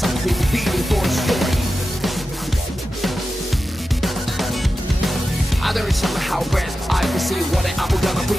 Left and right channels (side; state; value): both; normal; correlation 0.92